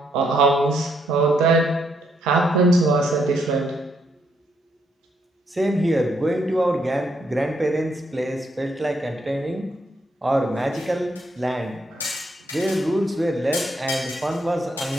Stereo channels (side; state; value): both; normal; correlation 0.75